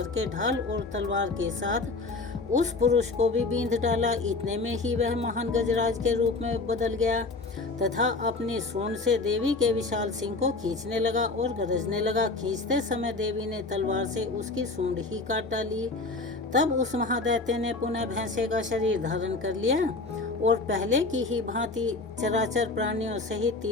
ढाल और तलवार के साथ उस पुरुष को भी बींध डाला। इतने में ही वह महान गजराज के रूप में बदल गया तथा अपनी सूंड से देवी के विशाल सिंह को खींचने लगा और गरजने लगा। खींचते समय देवी ने तलवार से उसकी सूंड ही काट डाली। तब उस महादैत्य ने पुनः भैंसे का शरीर धारण कर लिया और पहले की ही भांति चराचर प्राणियों सहित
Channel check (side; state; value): right; quieter; 3.6 dB